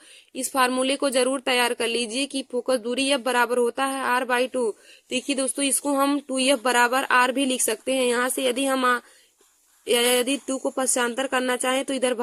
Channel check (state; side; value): identical; both; correlation 1.00